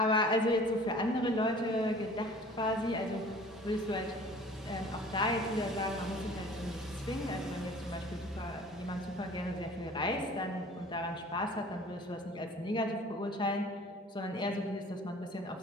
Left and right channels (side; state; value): both; normal; correlation 0.47